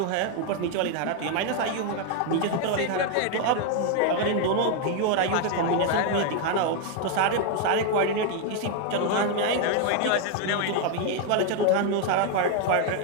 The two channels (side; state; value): both; different; correlation 0.01